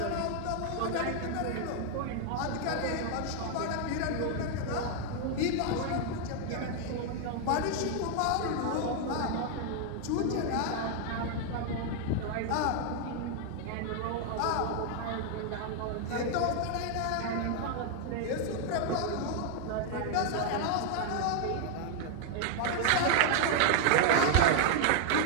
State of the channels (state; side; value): different; both; correlation 0.00